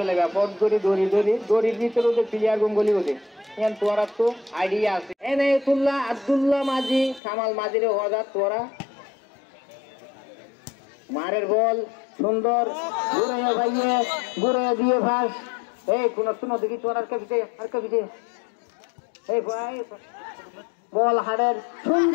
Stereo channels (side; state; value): right; drops out; at 7.2 s